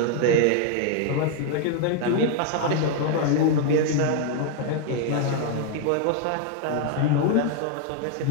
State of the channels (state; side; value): different; both; correlation 0.00